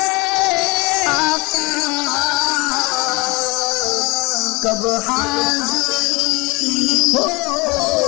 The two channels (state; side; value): quieter; right; 25.6 dB